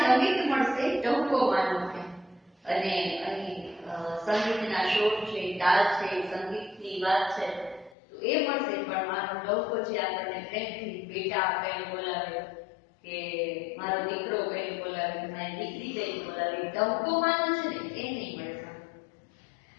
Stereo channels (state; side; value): drops out; right; at 8.0 s